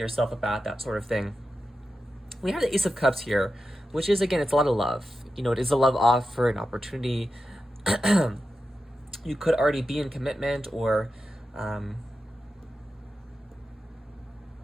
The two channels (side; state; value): both; normal; correlation 0.91